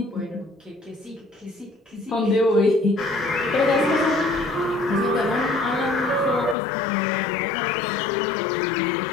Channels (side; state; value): right; drops out; at 6.6 s